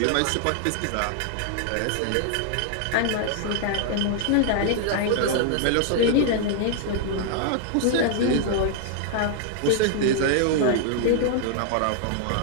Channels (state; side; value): different; both; correlation -0.01